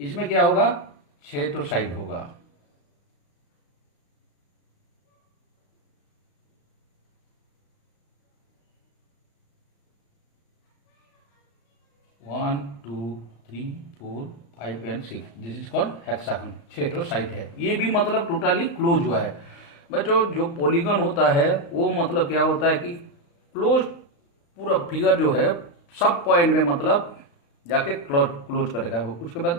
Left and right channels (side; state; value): right; late; 35 ms